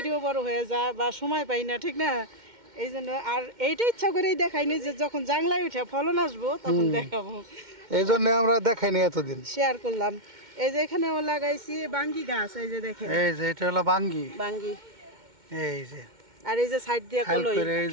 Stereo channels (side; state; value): left; late; 2.1 ms